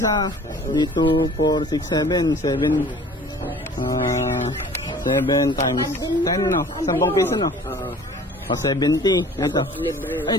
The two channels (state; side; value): normal; both; correlation 0.48